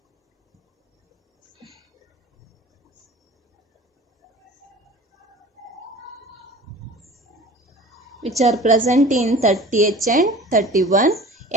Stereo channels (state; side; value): normal; both; correlation 0.42